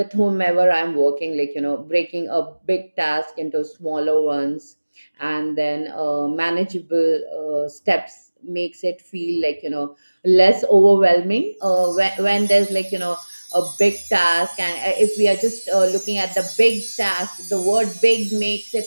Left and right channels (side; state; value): both; inverted; correlation -1.00